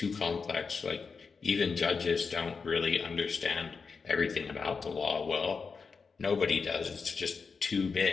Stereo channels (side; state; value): right; quieter; 5.1 dB